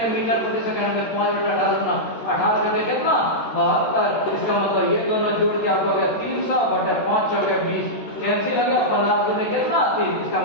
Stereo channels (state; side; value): late; right; 13 ms